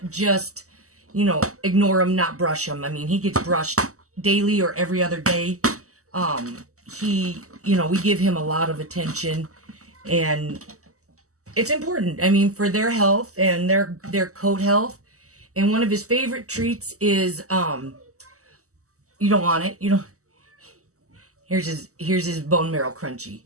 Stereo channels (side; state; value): left; late; 0.65 ms